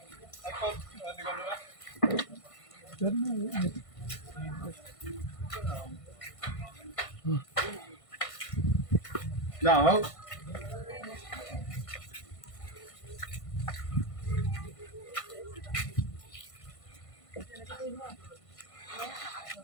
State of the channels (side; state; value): right; late; 1.5 ms